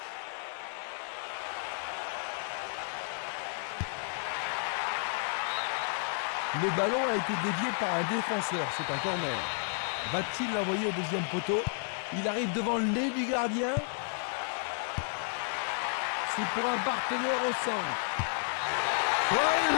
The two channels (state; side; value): silent; right; 57 dB below the other